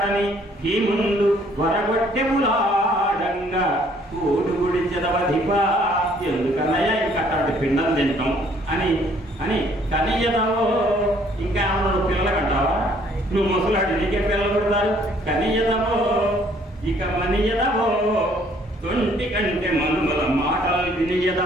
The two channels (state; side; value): normal; both; correlation 0.62